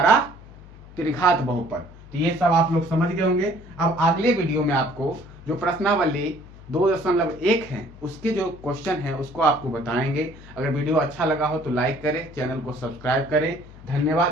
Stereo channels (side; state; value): left; noise; hum, 19 dB below the sound